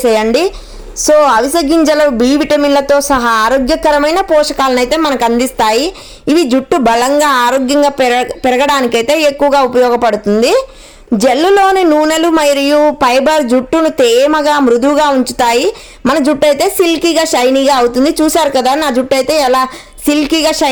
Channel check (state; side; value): identical; both; correlation 1.00